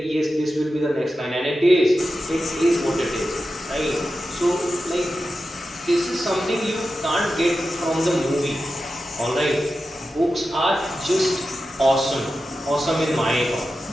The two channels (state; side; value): normal; both; correlation 0.91